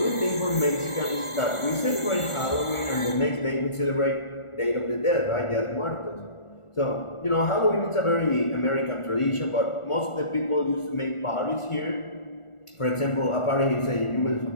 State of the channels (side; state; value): right; late; 1.4 ms